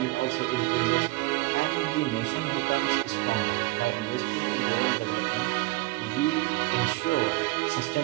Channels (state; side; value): quieter; left; 22.3 dB